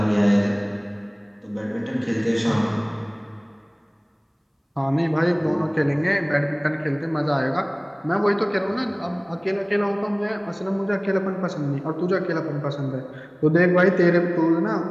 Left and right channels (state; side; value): identical; both; correlation 1.00